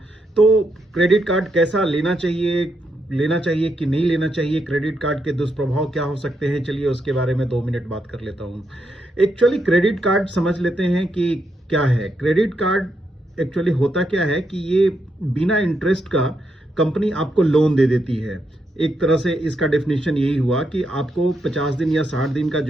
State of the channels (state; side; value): normal; both; correlation 0.80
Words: तो क्रेडिट कार्ड कैसा लेना चाहिए कि नहीं लेना चाहिए, क्रेडिट कार्ड के दुष्प्रभाव क्या हो सकते हैं, चलिए उसके बारे में 2 मिनट बात कर लेता हूँ। एक्चुअली क्रेडिट कार्ड समझ लेते हैं कि क्या है। क्रेडिट कार्ड एक्चुअली होता क्या है कि ये बिना इंटरेस्ट का कंपनी आपको लोन दे देती है। एक तरह से इसका डेफिनेशन यही हुआ कि आपको 50 दिन या 60 दिन का